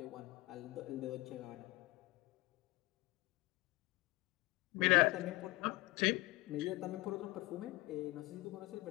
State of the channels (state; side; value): quieter; right; 21.2 dB